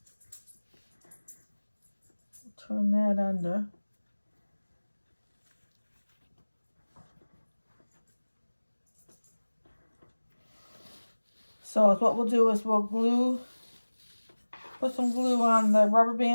Turn that under. So what we'll do is we'll put some glue on the rubber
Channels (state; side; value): inverted; both; correlation -1.00